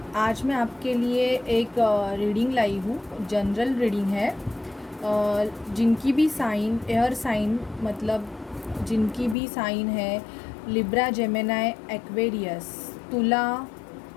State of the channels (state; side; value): drops out; right; at 9.3 s